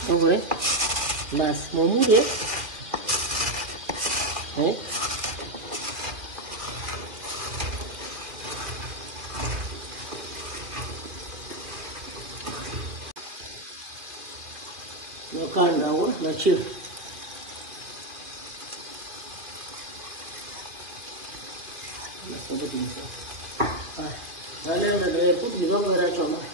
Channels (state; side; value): late; left; 2.4 ms